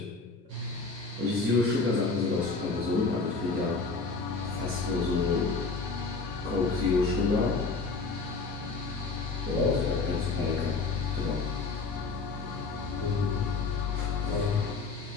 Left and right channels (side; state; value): right; quieter; 4.1 dB